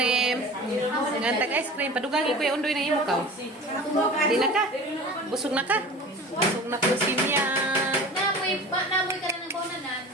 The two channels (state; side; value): normal; both; correlation 0.38